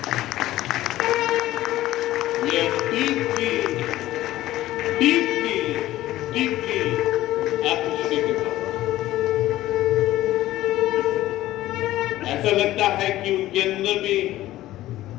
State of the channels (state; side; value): quieter; right; 15.3 dB